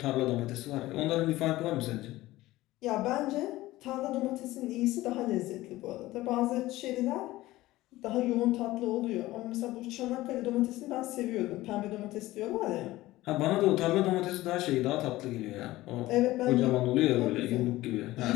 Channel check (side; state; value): right; quieter; 17.4 dB